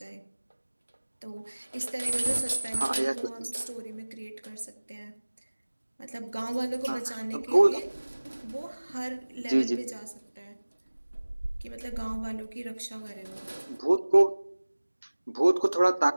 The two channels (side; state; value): both; inverted; correlation -1.00